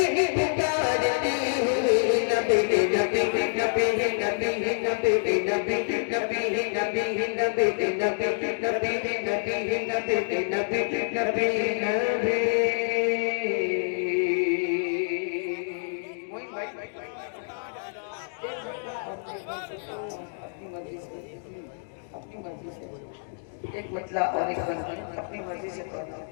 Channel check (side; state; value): right; silent; digital silence